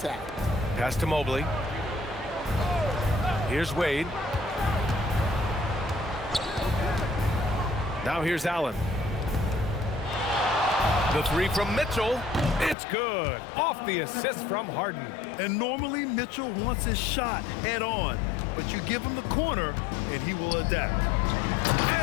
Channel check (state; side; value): drops out; right; at 12.8 s